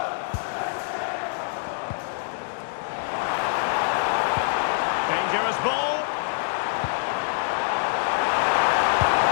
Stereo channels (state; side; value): silent; right; digital silence